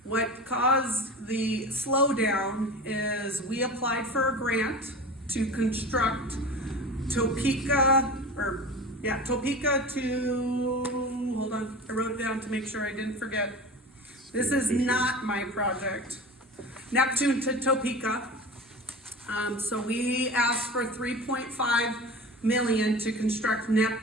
What caused the slowdown is we applied for a grant to construct Topeka to, hold on, I wrote it down to make sure I didn't forget. This is not my project. Neptune to Topeka. So we asked for 3.5 million to construct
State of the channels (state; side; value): normal; both; correlation 0.33